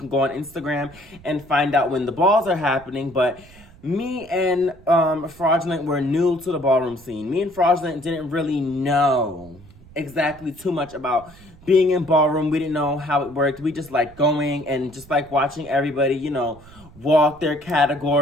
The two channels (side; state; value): right; noise; rumble, 23 dB below the sound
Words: go on Instagram and find out when the balls are happening. But me and Fraudulent were new to the ballroom scene. Me and Fraudulent didn't really know exactly too much about being in ballroom. We didn't know how it worked. We just like going and just like watching everybody, you know, walk their